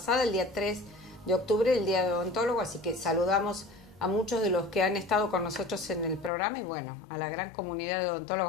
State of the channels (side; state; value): right; drops out; at 6.3 s